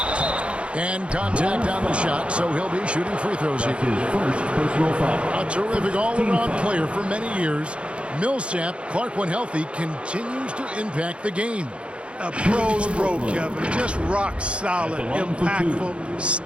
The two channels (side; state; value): left; late; 0.059 ms